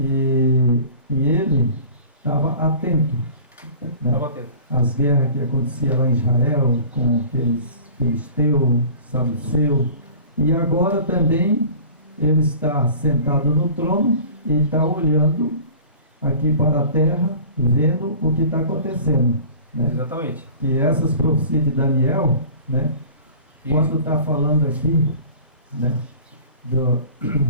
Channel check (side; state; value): both; inverted; correlation -0.43